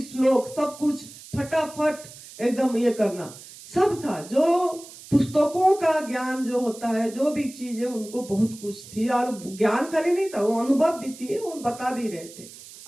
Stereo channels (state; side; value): noise; right; hiss, 17 dB below the sound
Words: सब कुछ फटाफट एकदम ये करना सब था। जो पुस्तकों का ज्ञान जो होता है, जो भी चीजें, उनको बहुत कुछ थी, और ज्ञान खाली नहीं था, वो अनुभव भी थी, वो बता भी रहे थे